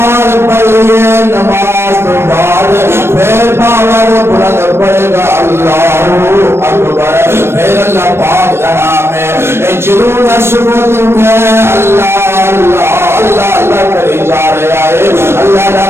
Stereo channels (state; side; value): late; left; 0.12 ms